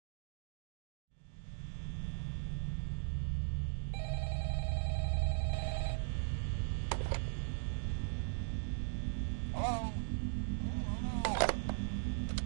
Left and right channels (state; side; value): silent; left; digital silence